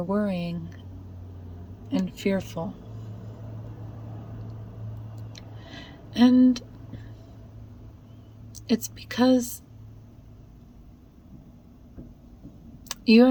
worrying and fearful. And it's because you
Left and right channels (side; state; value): both; identical; correlation 1.00